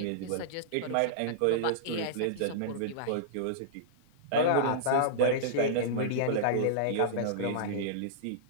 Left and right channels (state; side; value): different; both; correlation -0.02